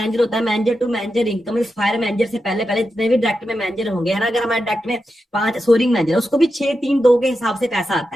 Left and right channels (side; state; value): both; normal; correlation 0.89